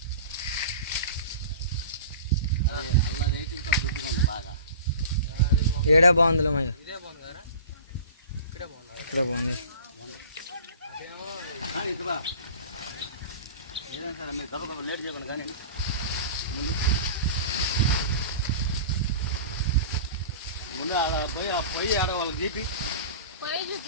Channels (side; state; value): both; inverted; correlation -0.39